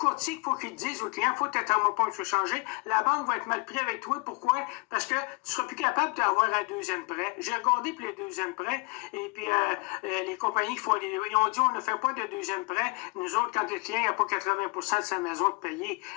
il faut qu'il dise au client, il faut que ta thermopompe soit changée, la banque va être mal prise avec toi, pourquoi? Parce que tu ne seras plus capable d'avoir un deuxième prêt. J'ai regardé pour les deuxièmes prêts, et puis les compagnies ils ont dit, on ne fait pas de deuxième prêt. Nous autres, quand le client n'a pas 80% de sa maison de payer,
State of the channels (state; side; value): quieter; right; 27.8 dB